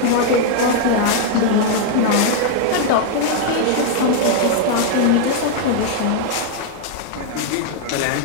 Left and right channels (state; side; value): different; both; correlation 0.00